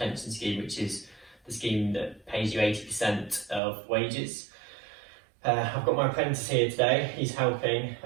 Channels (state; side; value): drops out; left; at 3.6 s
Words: scheme, which is the scheme that pays you 80% of wages. I've got my apprentice here today, he's helping,